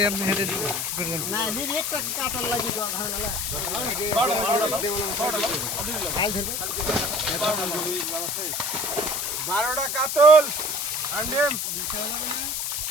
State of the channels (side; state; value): left; noise; hiss, 2 dB below the sound